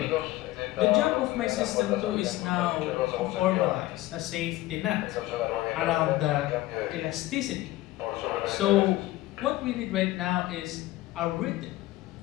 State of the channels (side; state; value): right; quieter; 17.1 dB